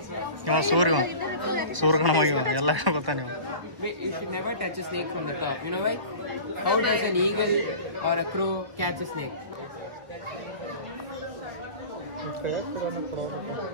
ಇವ ಸೂರ್ಯಗಣವಾಗಿವ ಎಲ್ಲ ಗೊತ್ತಾ ನೀವು You should never touch a snake from the top. You know why? How does an eagle or a crow catch a snake?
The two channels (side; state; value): left; late; 1.3 ms